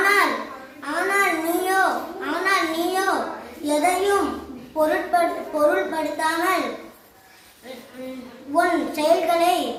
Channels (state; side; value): identical; both; correlation 1.00